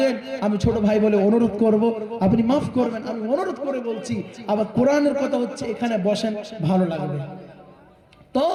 আমি ছোট ভাই বলে অনুরোধ করব, আপনি মাফ করবেন, আমি অনুরোধ করে বলছি। আবার কোরআনের কথা হচ্ছে, এখানে বসেন, ভালো লাগবে। তো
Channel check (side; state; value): both; identical; correlation 1.00